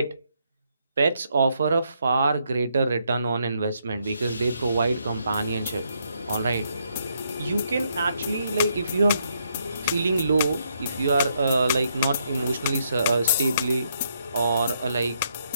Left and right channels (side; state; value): both; inverted; correlation -0.75